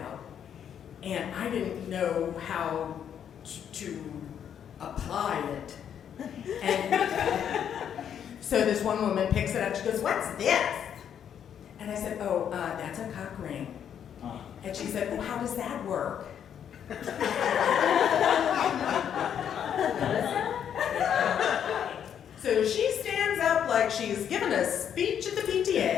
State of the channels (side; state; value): right; quieter; 8.8 dB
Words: And I didn't know how to apply it. And so this one woman picks it up, she goes, what's this? And I said, oh, that's a cock ring. And she said, well, how does that work? So she stands up like she's giving a speech at the